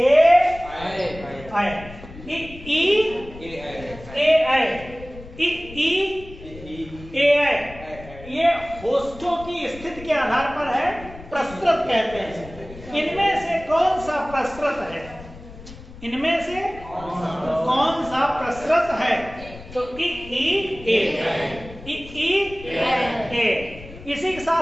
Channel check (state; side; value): noise; left; rumble, 16 dB below the sound